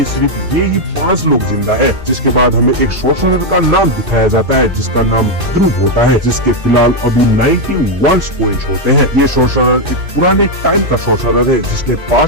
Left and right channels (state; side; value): late; left; 2.5 ms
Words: सिर्फ ये ही 5 लोग जिंदा है। जिसके बाद हमें एक सॉर्सरर का नाम दिखाया जाता है जिसका नाम ध्रुव होता है, जिसके फिलहाल अभी 91 पॉइंट्स होते हैं। ये सॉर्सरर एक पुराने टाइम का सॉर्सरर है जिसने